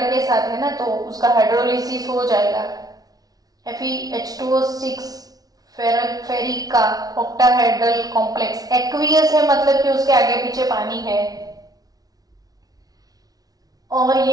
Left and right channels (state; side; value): late; left; 0.18 ms